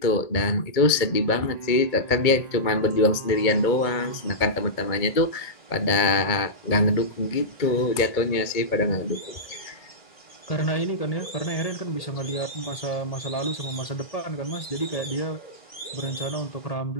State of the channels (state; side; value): late; right; 2.2 ms